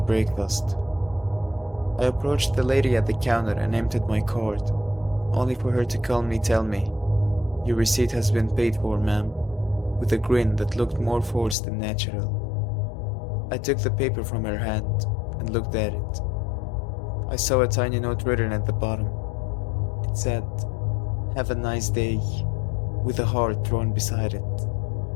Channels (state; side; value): drops out; right; at 11.6 s